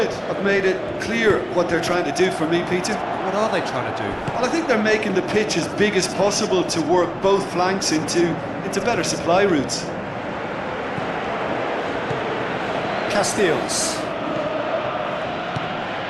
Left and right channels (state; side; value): identical; both; correlation 1.00